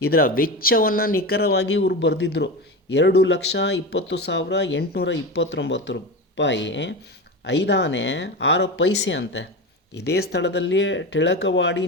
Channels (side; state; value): both; normal; correlation 0.23